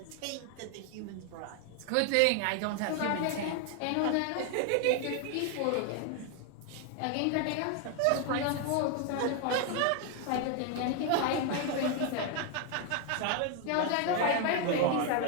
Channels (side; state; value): both; different; correlation 0.01